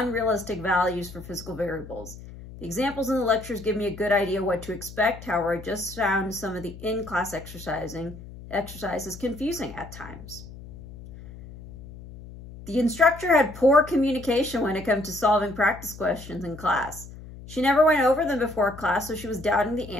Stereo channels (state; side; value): noise; left; hum, 15 dB below the sound